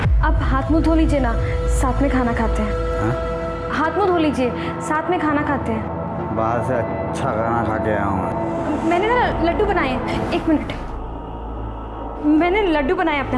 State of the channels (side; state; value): both; identical; correlation 1.00